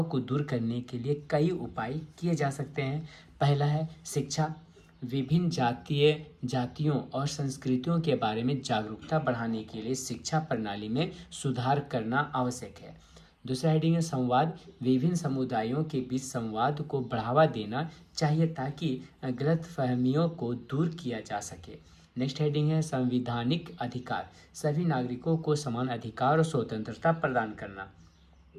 को दूर करने के लिए कई उपाय किए जा सकते हैं। पहला है शिक्षा, विभिन्न जातियों और संस्कृतियों के बारे में जागरूकता बढ़ाने के लिए शिक्षा प्रणाली में सुधार करना आवश्यक है। दूसरा हेडिंग है संवाद, विभिन्न समुदायों के बीच संवाद को बढ़ावा देना चाहिए ताकि गलतफहमियों को दूर किया जा सके। नेक्स्ट हेडिंग है संवैधानिक अधिकार, सभी नागरिकों को समान अधिकार और स्वतंत्रता प्रदान करना।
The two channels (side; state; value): both; identical; correlation 1.00